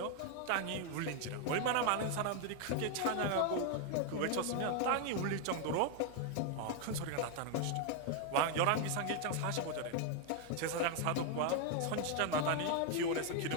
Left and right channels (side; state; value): both; different; correlation 0.00